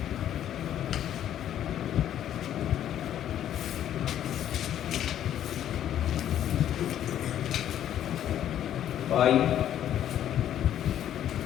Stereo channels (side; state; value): right; quieter; 11.0 dB